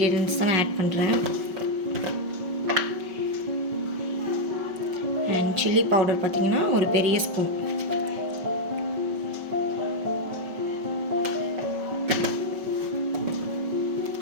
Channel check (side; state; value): left; late; 5.2 ms